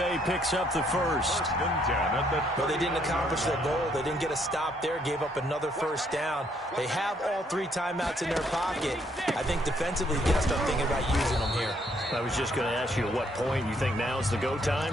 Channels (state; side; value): normal; both; correlation 0.69